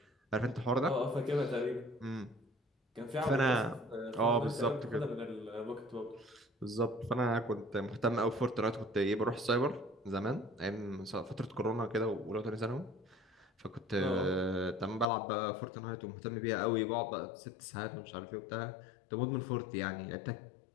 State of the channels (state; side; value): drops out; right; at 15.1 s